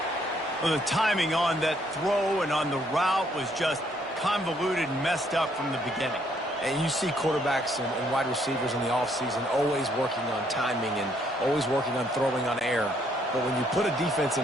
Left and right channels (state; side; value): normal; both; correlation 0.69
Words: Well, the timing on that throw and on the route was just convoluted and messed up from the beginning. And you see quarterbacks and wide receivers in the offseason always working on timing and always working on throwing on air. But when you put a defense